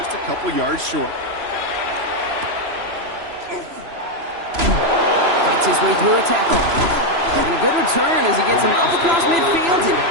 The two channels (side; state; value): left; late; 3.0 ms